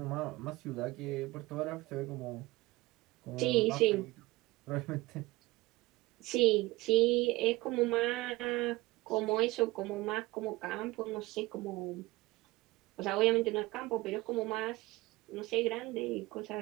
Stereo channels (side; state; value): left; quieter; 20.4 dB